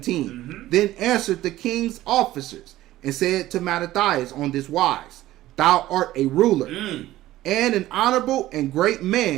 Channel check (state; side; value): quieter; left; 15.4 dB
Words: Then answered the king's officers and said to Mattathias on this wise, Thou art a ruler and an honorable and great